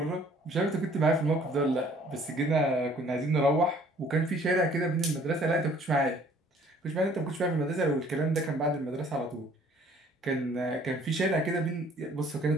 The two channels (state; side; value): normal; both; correlation 0.57